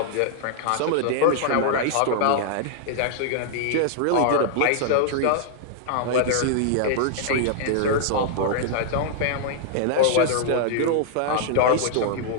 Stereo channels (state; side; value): different; both; correlation -0.01